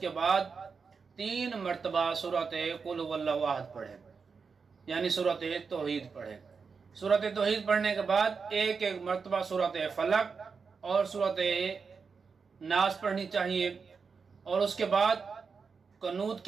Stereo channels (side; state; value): left; quieter; 5.3 dB